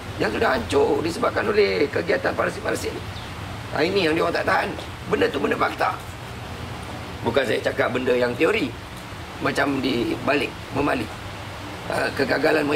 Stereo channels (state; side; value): identical; both; correlation 1.00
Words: yang sudah hancur disebabkan oleh kegiatan parasit-parasit ni. Ini yang dia orang tak tahan. Benda tu benda fakta. Bukan saya cakap benda yang teori, macam di balik Memali, kegagalan